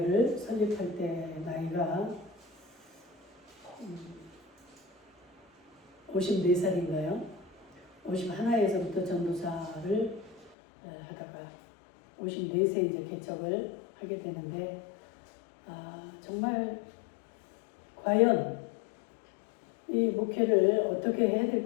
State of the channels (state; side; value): drops out; right; at 10.6 s